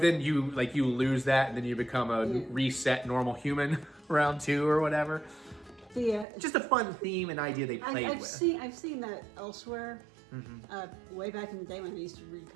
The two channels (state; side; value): drops out; left; at 6.2 s